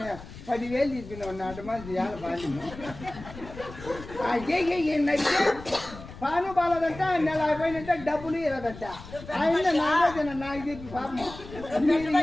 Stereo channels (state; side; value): noise; left; rumble, 15 dB below the sound